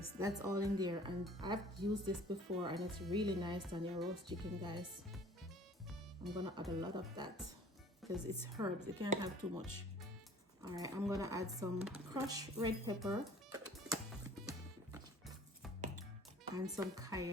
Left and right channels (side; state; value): both; normal; correlation 0.50